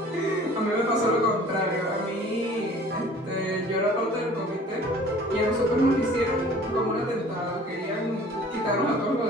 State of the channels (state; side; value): normal; both; correlation 0.49